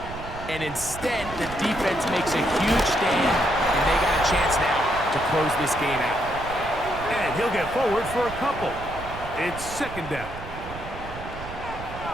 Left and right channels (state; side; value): noise; right; rumble, 12 dB below the sound